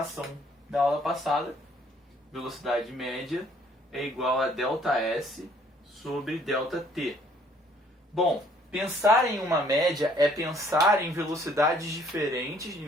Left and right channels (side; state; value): both; normal; correlation 0.61